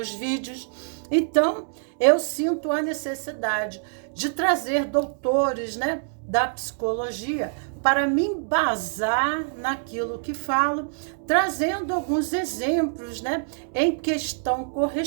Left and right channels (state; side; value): silent; left; digital silence